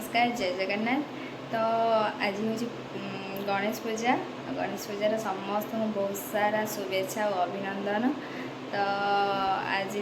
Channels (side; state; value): both; identical; correlation 1.00